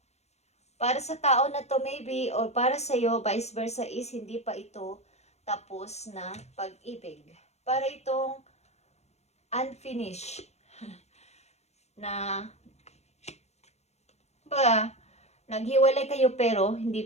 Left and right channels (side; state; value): right; late; 0.32 ms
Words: Para sa tao na to maybe, or para sa iyo, vice versa is hindi pa ito tapos na pag-ibig. Para itong unfinished na naghiwalay kayo pero hindi